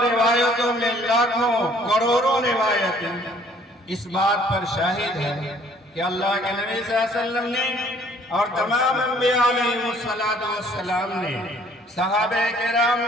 روایتوں میں لاکھوں کروڑوں روایتیں اس بات پر شاہد ہے کہ اللہ کے نبی صلی اللہ علیہ وسلم نے اور تمام انبیاء علیہ السلام نے، صحابہ کرام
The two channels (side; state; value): both; normal; correlation 0.59